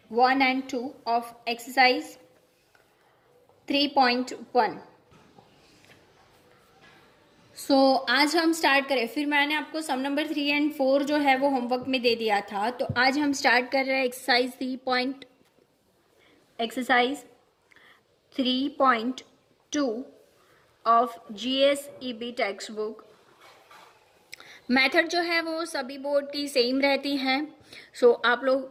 1 and 2 ऑफ एक्सरसाइज 3.1. सो आज हम स्टार्ट करें. फिर मैंने आपको सम नंबर 3 and 4 जो है वो होमवर्क में दे दिया था. तो आज हम स्टार्ट कर रहे हैं exercise 3.2 of GSEB text book. Method जो है वो सभी बोर्ड की सेम रहती हैं. सो आप लोग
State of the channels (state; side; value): identical; both; correlation 1.00